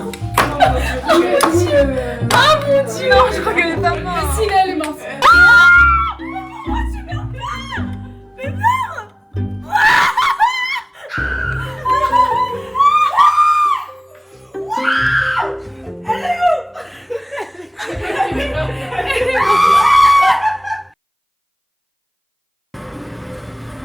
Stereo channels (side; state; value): both; identical; correlation 1.00